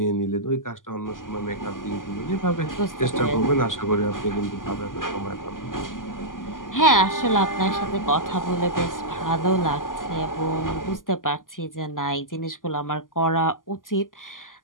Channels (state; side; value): late; right; 0.89 ms